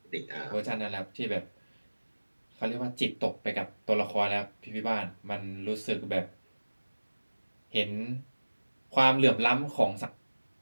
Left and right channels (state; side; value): inverted; both; correlation -1.00